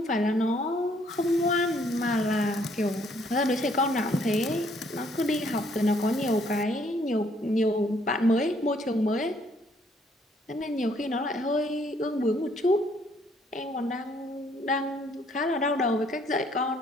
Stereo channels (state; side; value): normal; both; correlation 0.66